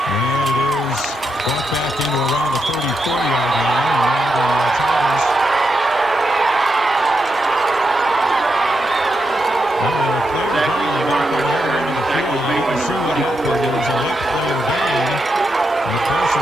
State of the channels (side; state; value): both; normal; correlation 0.84